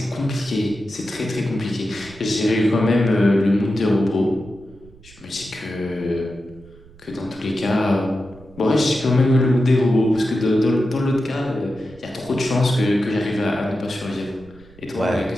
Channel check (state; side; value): noise; right; rumble, 24 dB below the sound